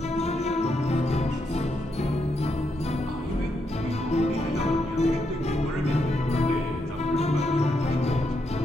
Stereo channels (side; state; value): both; normal; correlation 0.80